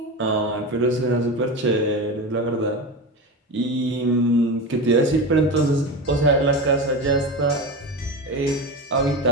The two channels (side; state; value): both; normal; correlation 0.23